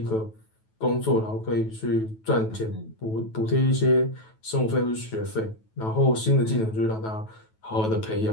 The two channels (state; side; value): late; right; 9.2 ms